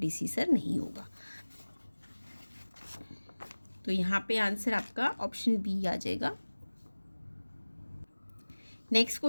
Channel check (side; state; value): both; inverted; correlation -1.00